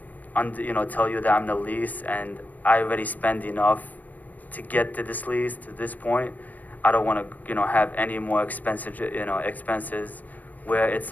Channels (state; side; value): late; right; 0.081 ms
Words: tell you that I'm in a lease, and I already spend enough to get to this lease to this point. I don't want to have any more expenses where it's